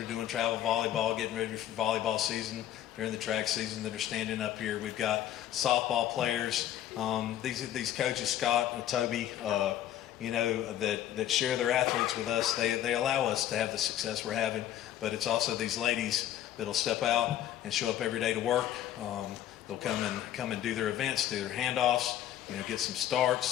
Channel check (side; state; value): right; quieter; 11.8 dB